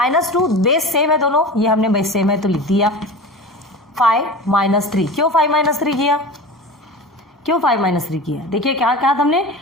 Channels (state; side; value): normal; both; correlation 0.32